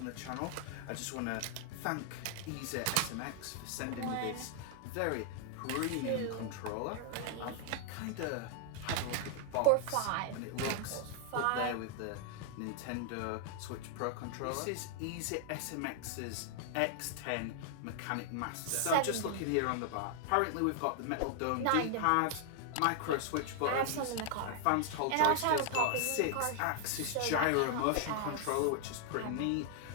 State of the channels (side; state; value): both; different; correlation 0.00